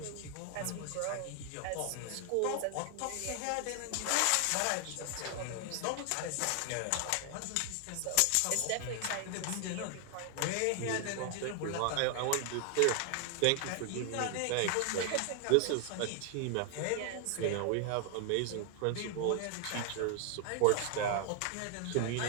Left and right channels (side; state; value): both; different; correlation 0.00